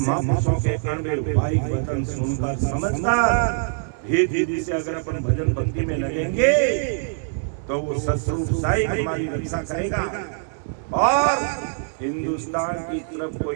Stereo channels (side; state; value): left; silent; digital silence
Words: के अणबे भाई वचन सुनकर समझकर धीरे से अगर अपन भजन भक्ति में लगेंगे तो वो शत्रु साई हमारी रक्षा करेगा और हिंदुस्तान की तरफ